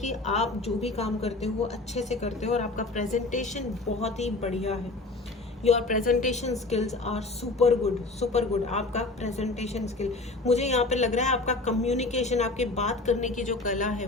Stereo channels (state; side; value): quieter; right; 3.2 dB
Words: आप जो भी काम करते हो वो अच्छे से करते हो और आपका प्रेजेंटेशन बहुत ही बढ़िया है। Your presentation skills are super good. आपका प्रेजेंटेशन स्किल, मुझे यहाँ पे लग रहा है आपका कम्युनिकेशन, आपके बात करने की जो कला है